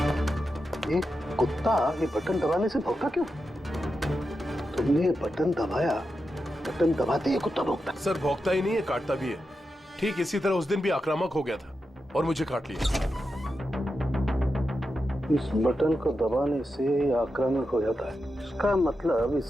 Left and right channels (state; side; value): normal; both; correlation 0.89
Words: ये कुत्ता ये बटन दबाने से भौंका क्यों? तुमने ये बटन दबाया, बटन दबाते ही कुत्ता भौंकता। सर भौंकता ही नहीं है, काटता भी है। ठीक इसी तरह उस दिन भी आक्रामक हो गया था और मुझे काट लिया। इस बटन को दबाने से आक्रामक हो जाता है। इसका मतलब